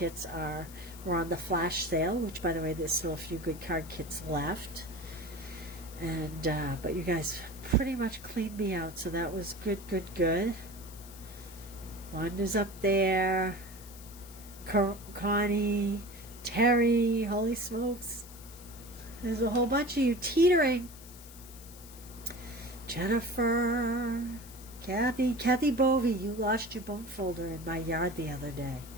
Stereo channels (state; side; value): noise; left; hiss, 18 dB below the sound